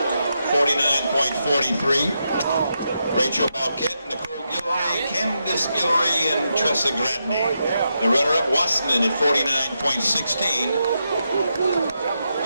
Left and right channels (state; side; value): inverted; both; correlation -0.85